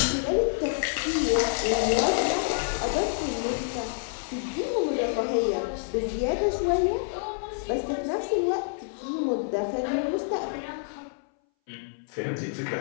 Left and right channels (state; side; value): silent; right; 60 dB below the other